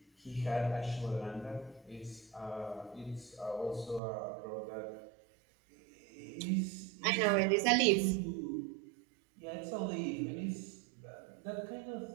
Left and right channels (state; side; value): drops out; left; at 4.0 s